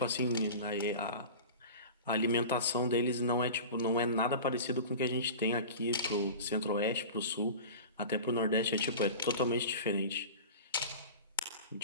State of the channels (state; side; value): inverted; both; correlation -0.34